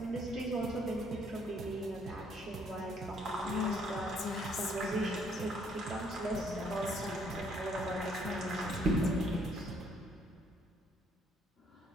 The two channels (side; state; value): both; normal; correlation 0.66